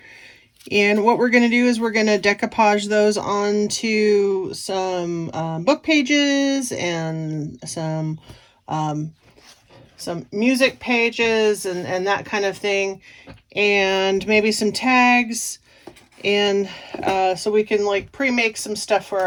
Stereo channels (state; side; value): identical; both; correlation 1.00